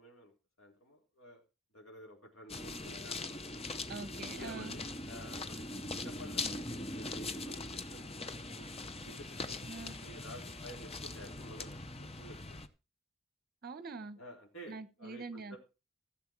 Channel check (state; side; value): normal; both; correlation 0.47